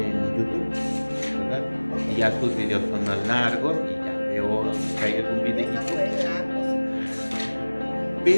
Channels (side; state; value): both; inverted; correlation -1.00